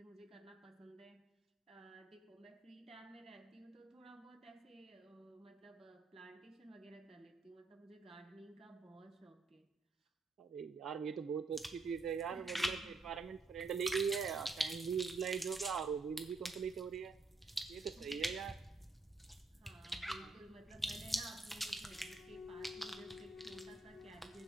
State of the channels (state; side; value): quieter; left; 3.7 dB